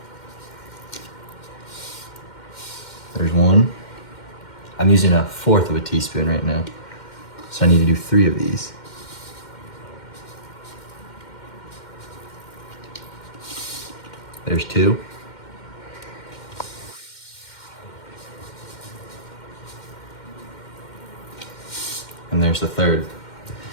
There's 1. I'm using 1/4 of a teaspoon right now, so I need to do 3 of these. There's 2. And there's the 3rd.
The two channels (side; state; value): right; late; 2.1 ms